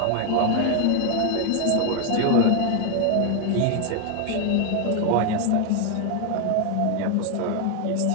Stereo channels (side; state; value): both; different; correlation 0.00